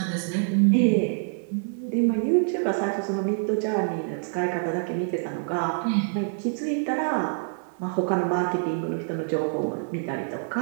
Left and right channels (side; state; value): left; silent; digital silence